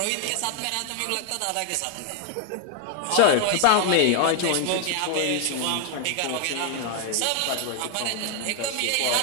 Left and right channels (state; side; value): different; both; correlation 0.00